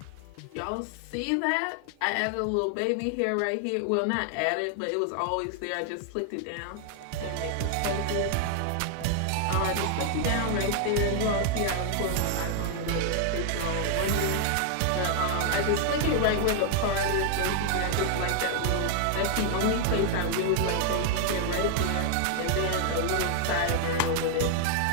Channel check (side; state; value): both; different; correlation 0.00